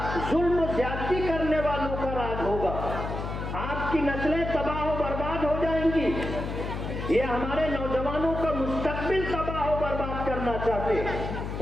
जुल्म ज्यादती करने वालों का राज होगा। आपकी नस्लें तबाह व बर्बाद हो जाएंगी। ये हमारे नौजवानों का मुस्तकबिल तबाह व बर्बाद करना चाहते हैं,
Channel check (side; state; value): left; noise; hum, 5 dB below the sound